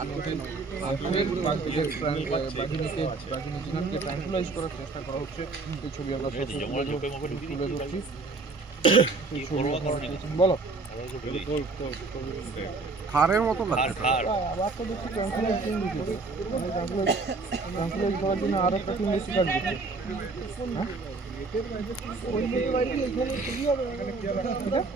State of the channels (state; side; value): quieter; left; 3.8 dB